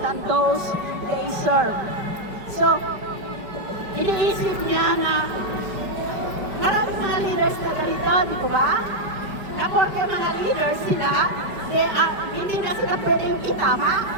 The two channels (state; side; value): late; left; 5.0 ms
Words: than those they serve. So, iniisip niya na maraming mga leaders na ganito, di po ba? Na porque mga leaders sila, hindi na sila pwedeng itama